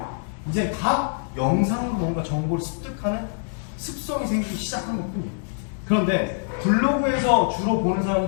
이제 다 영상으로 뭔가 정보를 습득하는 습성이 생기기 시작한 것뿐이에요. 그런데 블로그에서 주로 보는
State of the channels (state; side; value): silent; right; digital silence